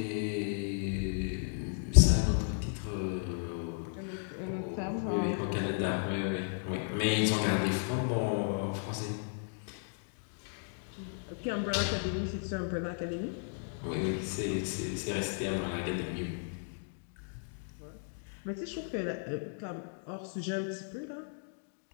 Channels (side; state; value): right; silent; digital silence